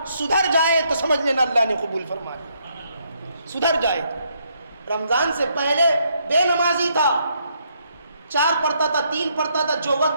سدھر جائے تو سمجھ لینا اللہ نے قبول فرما لیا. سدھر جائے, رمضان سے پہلے بے نمازی تھا, 4 پڑھتا تھا, 3 پڑھتا تھا, جو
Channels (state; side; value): inverted; both; correlation -0.73